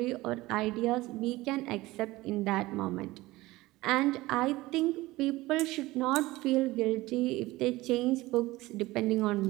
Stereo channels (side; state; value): left; quieter; 19.2 dB